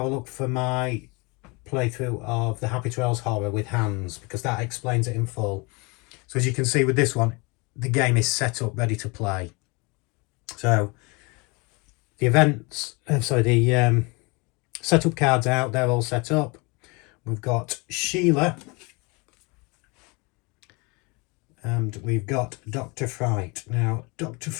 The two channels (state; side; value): quieter; right; 28.2 dB